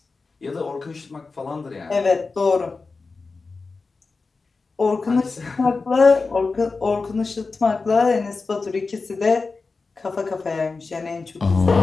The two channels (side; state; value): right; quieter; 4.1 dB